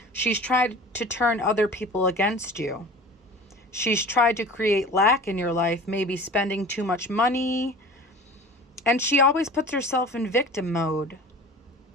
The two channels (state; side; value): normal; both; correlation 0.40